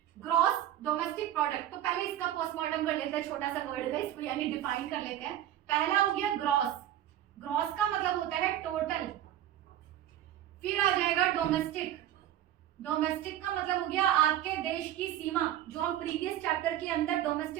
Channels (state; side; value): quieter; left; 12.1 dB